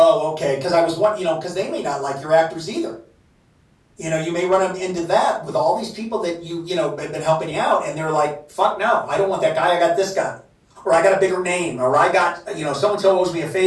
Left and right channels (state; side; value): identical; both; correlation 1.00